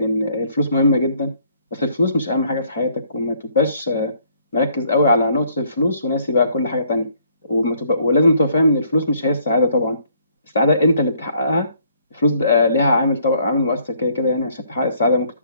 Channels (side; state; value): both; inverted; correlation -0.64